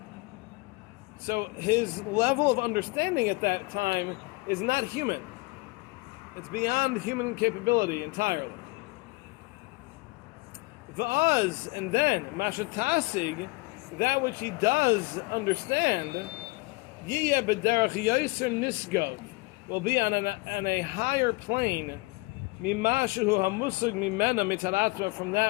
So his level of understanding at that time is not human. It's beyond human capability entirely. V'az, and then, mashatasig, that which he does understand, yiyeh b'derech yoser nisgov, will be on a higher plane, mimashu hamusug mimena mitaratva, from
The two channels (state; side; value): quieter; right; 25.5 dB